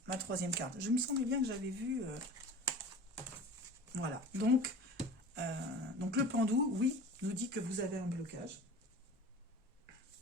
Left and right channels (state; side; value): normal; both; correlation 0.38